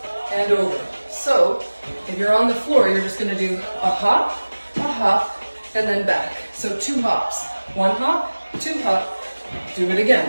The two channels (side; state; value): both; inverted; correlation -1.00